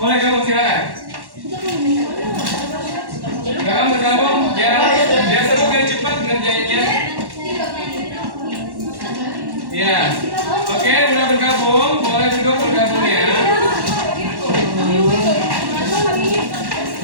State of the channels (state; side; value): late; left; 1.1 ms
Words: gabung silakan. Gabung, biar seru biar cepat ngerjainnya. Ya, oke, udah bergabung, boleh duduk bergabung ya.